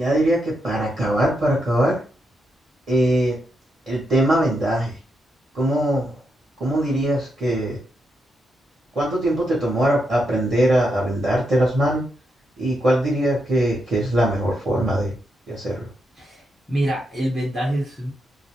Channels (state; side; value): normal; both; correlation 0.83